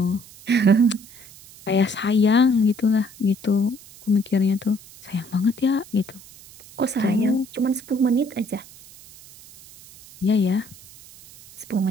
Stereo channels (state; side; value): noise; right; hiss, 21 dB below the sound